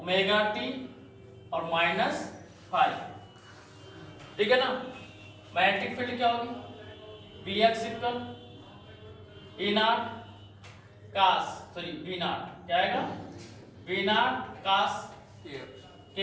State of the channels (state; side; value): identical; both; correlation 1.00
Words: टी और माइनस फाइव, ठीक है ना। मैग्नेटिक फील्ड क्या होगी, V X equal E not cos, sorry V not क्या आएगा, वी नॉट कास के